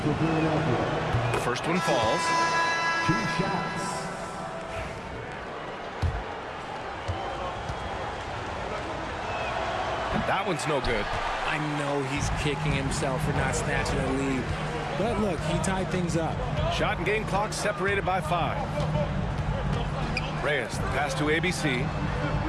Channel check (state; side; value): identical; both; correlation 1.00